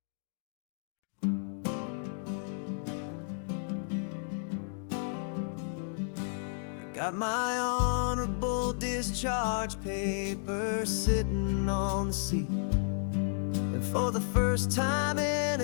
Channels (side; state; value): right; silent; digital silence